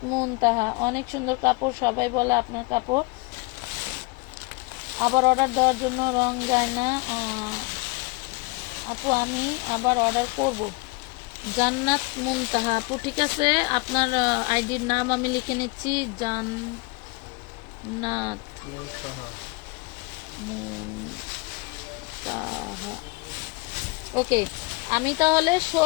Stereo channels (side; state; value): right; quieter; 26.8 dB